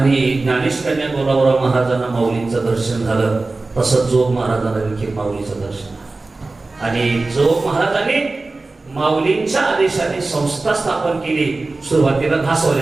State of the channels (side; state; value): left; quieter; 3.4 dB